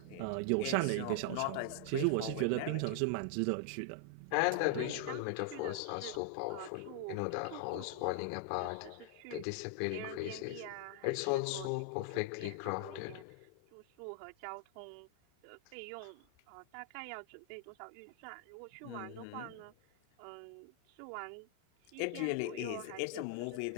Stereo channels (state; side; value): different; both; correlation -0.01